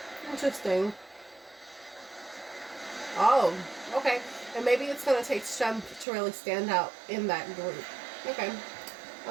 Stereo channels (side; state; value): left; drops out; at 6.1 s